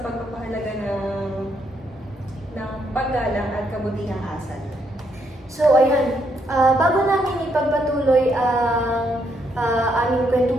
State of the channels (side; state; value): both; normal; correlation 0.75